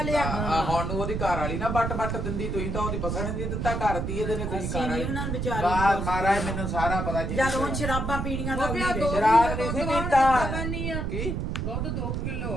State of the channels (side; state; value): right; noise; rumble, 2 dB below the sound